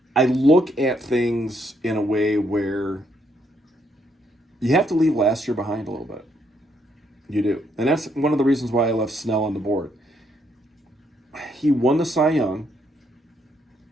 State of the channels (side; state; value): both; normal; correlation 0.73